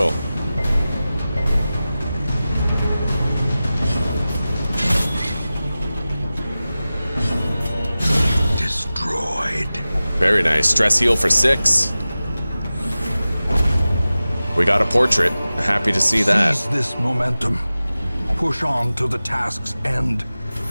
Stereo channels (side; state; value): both; inverted; correlation -0.96